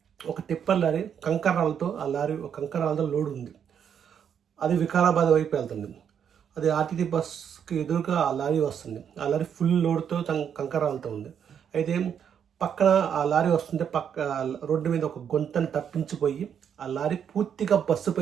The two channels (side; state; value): left; quieter; 8.2 dB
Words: ఒక టిప్పర్ లారీ కంకరాలతో కంకరాలతో లోడ్ ఉంది. అది వికారాబాద్ వైపు వెళ్తుంది. అది ఆర్టీసీ బస్కి ఎదురుగా ఆ లారీ వస్తుంది. ఆ లారీ ఫుల్ లోడ్తో కంకరాలతో ఉంది. అయితే పక్కన ఆ లారీ వస్తుంటే రోడ్డు మీద ఒక గుంతను తప్పించిపోయి ఆ లారీ పూర్తిగా